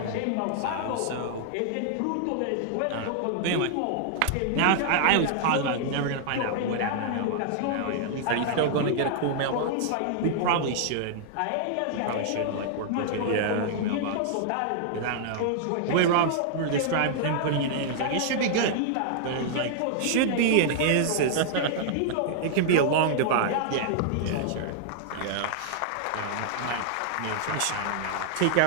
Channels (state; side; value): different; both; correlation -0.01